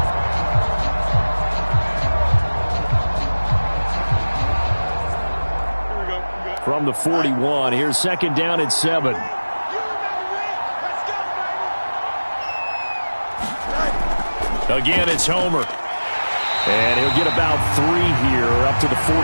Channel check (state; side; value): inverted; both; correlation -1.00